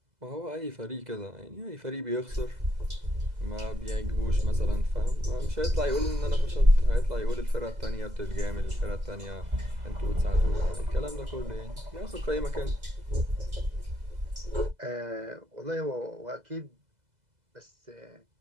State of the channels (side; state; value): left; late; 2.0 ms